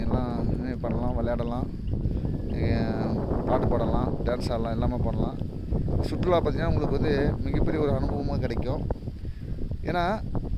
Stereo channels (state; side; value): identical; both; correlation 1.00